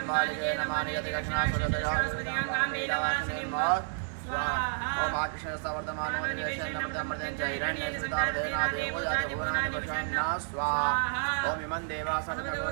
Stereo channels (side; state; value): left; silent; 57 dB below the other